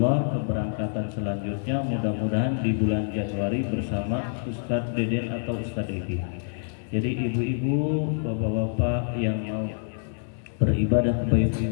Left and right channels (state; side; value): silent; right; digital silence